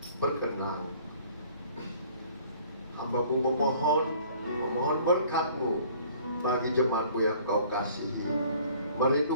berkenan. Hamba-Mu memohon berkat-Mu bagi jemaat-Mu yang Kau kasihi. Mari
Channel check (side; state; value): both; inverted; correlation -0.54